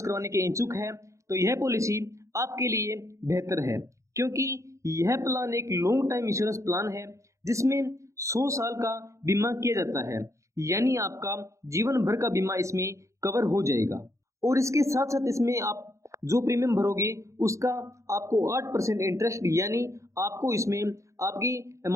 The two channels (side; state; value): left; late; 0.15 ms